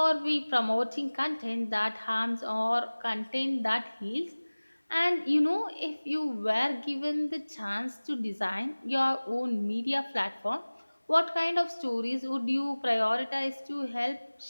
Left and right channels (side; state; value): both; inverted; correlation -1.00